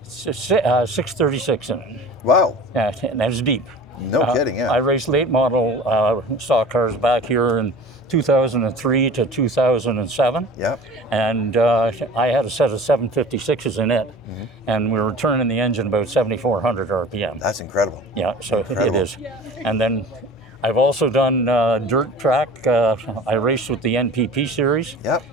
636 in it. Wow. Yeah, and that's deep. No kidding, yeah. I raced late model stock cars back here in 2003 to 2007. Yep. And I had a set of 756s in it, mm-hmm, and we were turning the engine about 7,400 RPM. That's incredible. Yeah, so incredible. It is. And then I've also done dirt track. I raced with the NPP series. Yep.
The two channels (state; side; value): normal; both; correlation 0.41